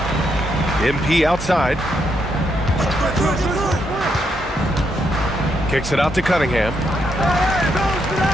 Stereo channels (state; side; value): normal; both; correlation 0.78